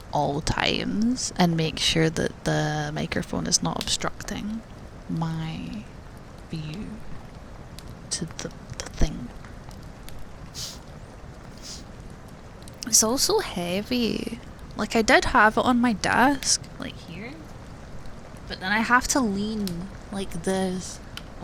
all times and make sure that the microphone is not obstructing my view to the thing. It's also heavy. Like, I did have it on my desk, like here, but then I have to lean like this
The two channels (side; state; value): both; identical; correlation 1.00